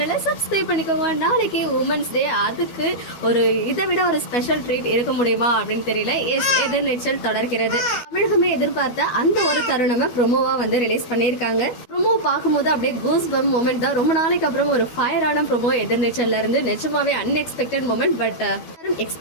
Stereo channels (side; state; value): right; late; 12 ms